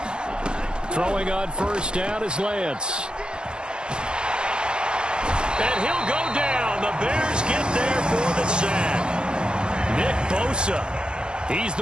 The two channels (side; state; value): left; late; 0.050 ms